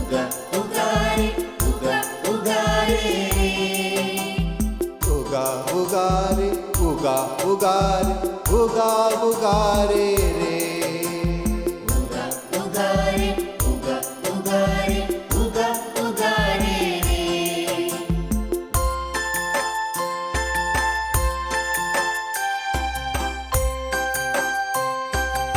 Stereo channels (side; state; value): both; identical; correlation 1.00